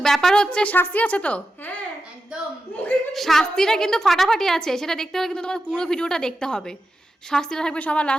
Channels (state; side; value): normal; both; correlation 0.90